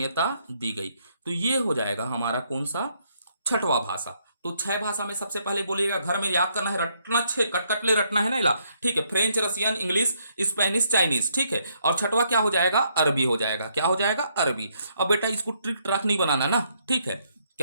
दी गई। तो ये हो जाएगा हमारा कौन सा, छठवां भाषा। तो 6 भाषा में सबसे पहले बोलिएगा, घर में याद करना है, रटना, 6 कटकटले रटना है ना इला, ठीक है। French, Russian, English, Spanish, Chinese, ठीक है। और छठवा क्या हो जाएगा, अरबी हो जाएगा, क्या हो जाएगा, अरबी। अब बेटा इसको ट्रिक ट्रैक नहीं बनाना ना, ठीक है।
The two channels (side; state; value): both; inverted; correlation -0.73